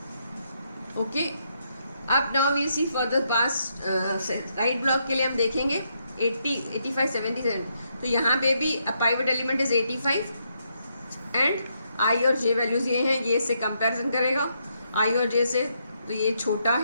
ओके, अब now we see for the past right block के लिए हम देखेंगे 80 85 77। तो यहाँ पे भी pivot element is 85 and I और जे वैल्यूज ये हैं, ये इससे कंपैरिजन करेगा आई और जे से, तो ये छोटा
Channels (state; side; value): inverted; both; correlation -0.78